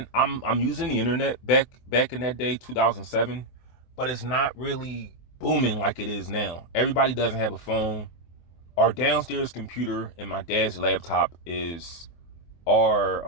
I'm using the internet back in that day, 2007, but it's not really booming like it is now. Everybody doesn't have a phone. Our downstairs computer and my dad's laptop is our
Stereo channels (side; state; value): right; late; 24 ms